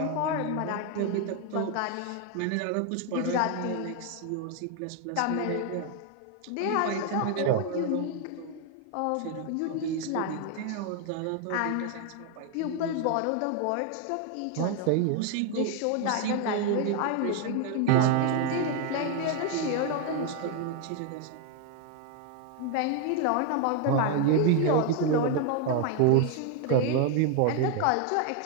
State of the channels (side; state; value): both; different; correlation 0.01